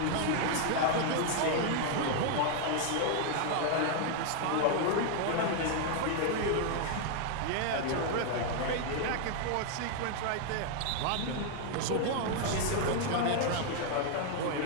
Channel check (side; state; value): both; different; correlation 0.00